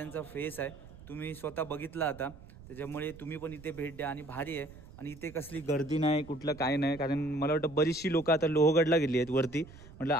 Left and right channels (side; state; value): right; noise; rumble, 19 dB below the sound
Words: फेस आहे. तुम्ही स्वतः बघितला आता, त्याच्यामुळे तुम्ही पण इथे भेट द्या. आणि भारी आहे. आणि इथे कसली गर्दी नाही, कुठलं काय नाही. कारण मला वाटतं बरीचशी लोकं आता लोहगडला गेली आहेत वरती. म्हटलं